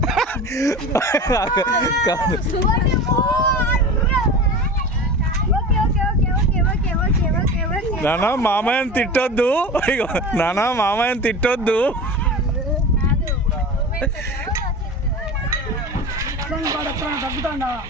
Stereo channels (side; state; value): both; normal; correlation 0.31